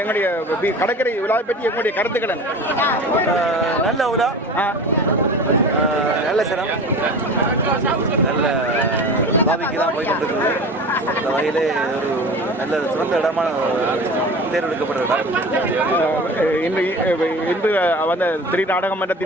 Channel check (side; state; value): both; normal; correlation 0.36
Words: எங்களுடைய கடற்கரை விழாவை பற்றி எங்களுடைய கருத்துக்கள் நல்ல விழா நல்ல சிரம் நல்ல பாவிக்கு தான் போய் கொண்டிருக்கிறது இந்த வகையிலே ஒரு நல்ல சிறந்த இடமான தேர்ந்தெடுக்கப்பட்ட இடம் இன்று வந்த திரு நாடக